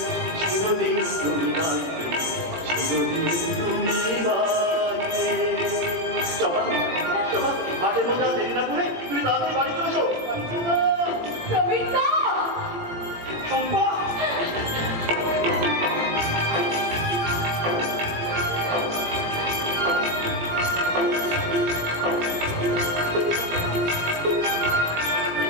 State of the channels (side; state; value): left; late; 18 ms